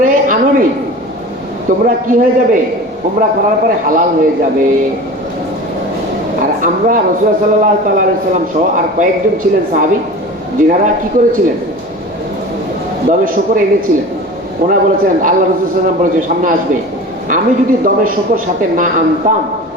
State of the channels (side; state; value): both; normal; correlation 0.35